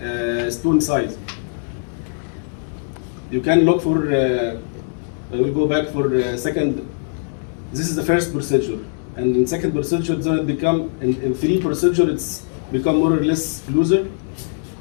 stone size. You can look for, I will go back for second. This is the first procedure. And in second procedure, then it become, in 3 procedure, it's become more or less closer.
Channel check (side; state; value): right; silent; digital silence